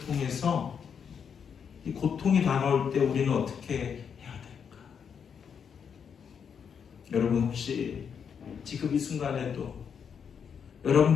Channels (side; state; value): right; quieter; 7.1 dB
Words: 통해서 이 고통이 다가올 때 우리는 어떻게 해야 될까? 여러분 혹시 지금 이 순간에도